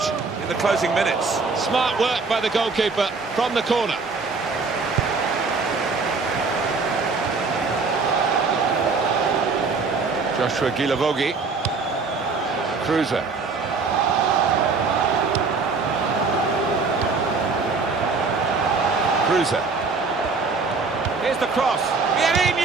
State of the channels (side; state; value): left; quieter; 4.3 dB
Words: in the closing minutes. Smart work by the goalkeeper from the corner. Joshua Gilavogi. Cruiser. Cruiser. Here's the cross.